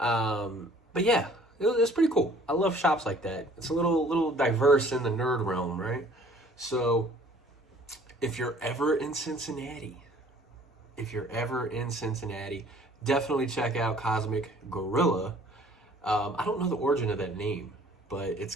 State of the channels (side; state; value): both; normal; correlation 0.54